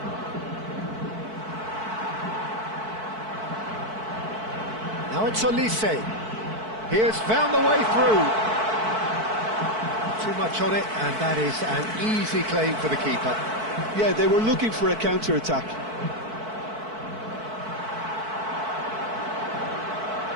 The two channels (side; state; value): left; late; 4.6 ms